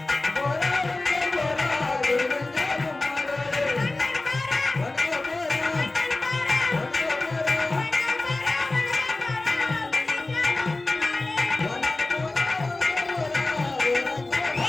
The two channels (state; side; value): quieter; right; 3.0 dB